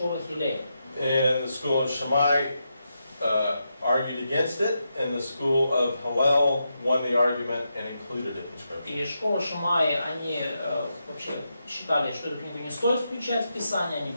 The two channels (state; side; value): inverted; both; correlation -0.85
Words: Хилель. And the school of Shammai argued against it, and the school of Hillel won the argument and included it in Scripture. И школа Шамай, они вообще считали, что эту книгу не стоит включать в Писание, они